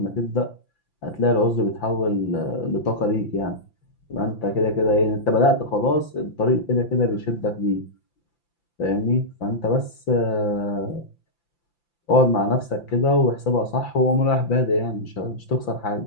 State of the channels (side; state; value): right; late; 5.9 ms